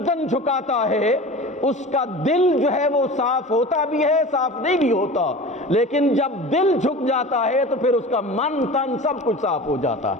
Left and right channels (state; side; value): normal; both; correlation 0.35